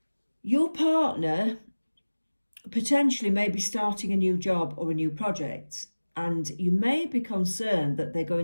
Your partner potentially may be starting a new job or a new project, and you may be concerned that they're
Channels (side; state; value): both; inverted; correlation -1.00